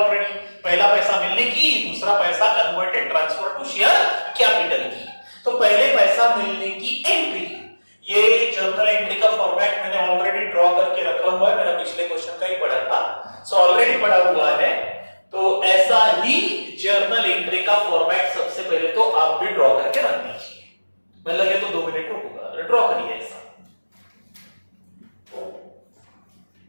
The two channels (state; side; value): inverted; both; correlation -1.00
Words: पहला पैसा मिलने की, दूसरा पैसा converted transfer to share capital की। तो पहले पैसा मिलने की एंट्री, ये जर्नल एंट्री का फॉर्मेट मैंने ऑलरेडी ड्रॉ करके रखा हुआ है, मेरा पिछले क्वेश्चन का ही पढ़ा था, सो ऑलरेडी पढ़ा हुआ है। तो ऐसा ही जर्नल एंट्री का फॉर्मेट सबसे पहले तो आप भी ड्रॉ करके रख दीजिए। मैं लगे तो 2 मिनट रुकूंगा, ड्रॉ करिए ऐसा।